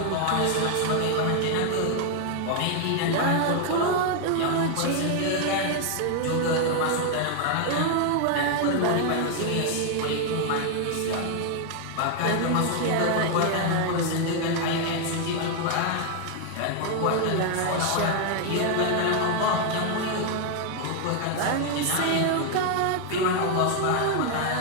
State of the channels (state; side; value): different; both; correlation 0.01